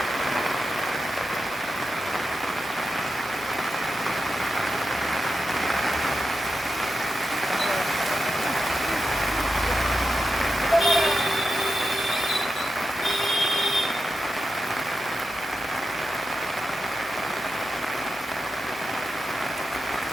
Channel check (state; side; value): normal; both; correlation 0.90